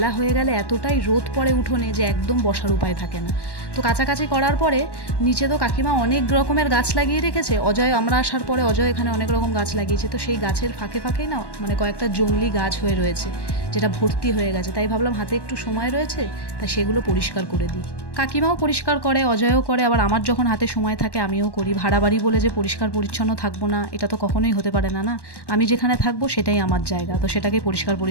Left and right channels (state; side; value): late; right; 1.1 ms